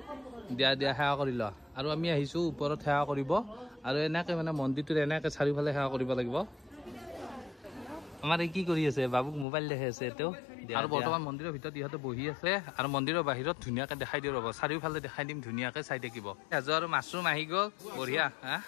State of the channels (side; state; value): right; drops out; at 9.5 s